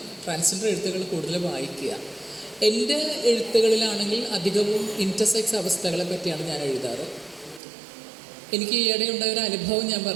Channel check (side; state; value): left; drops out; at 7.6 s